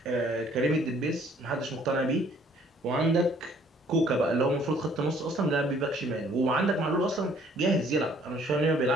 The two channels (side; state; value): both; normal; correlation 0.60